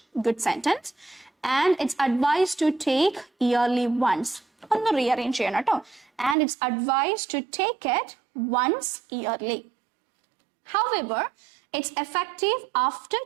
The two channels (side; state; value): left; drops out; at 6.4 s